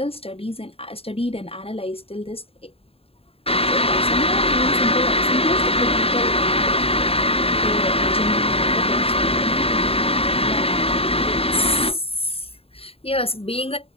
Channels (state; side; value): late; right; 0.28 ms